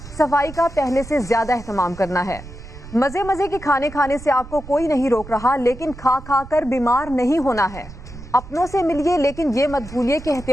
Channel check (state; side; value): noise; right; rumble, 15 dB below the sound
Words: सफाई का पहले से ज़्यादा एहतमाम करना है। मज़े मज़े के खाने खाने से आपको कोई नहीं रोक रहा, लेकिन खा खा कर बीमार नहीं होना है। अपनों से मिलिए, लेकिन ये मत भूलिए कि